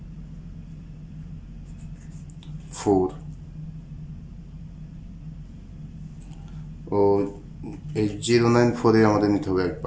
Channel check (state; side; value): identical; both; correlation 1.00